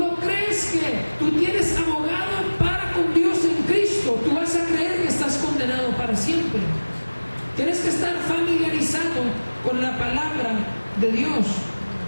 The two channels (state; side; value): inverted; both; correlation -1.00